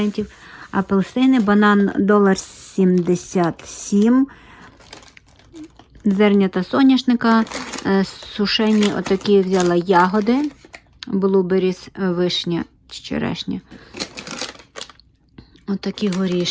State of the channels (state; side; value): identical; both; correlation 1.00